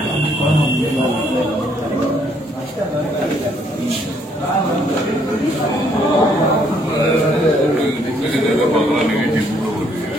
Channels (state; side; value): normal; both; correlation 0.68